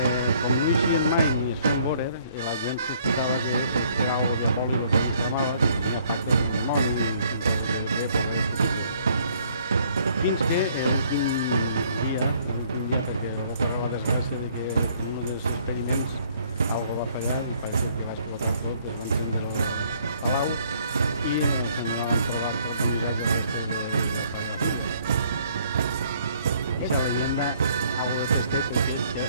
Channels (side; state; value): both; inverted; correlation -0.63